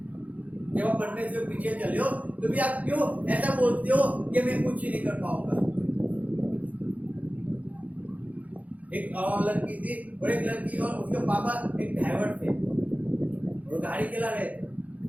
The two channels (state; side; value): late; left; 0.072 ms